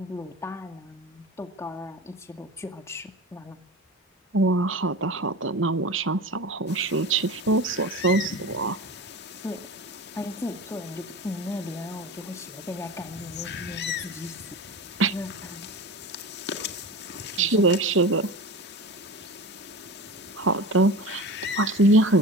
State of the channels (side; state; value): both; normal; correlation 0.31